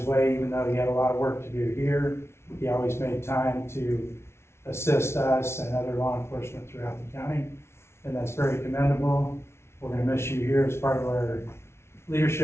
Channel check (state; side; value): late; right; 0.12 ms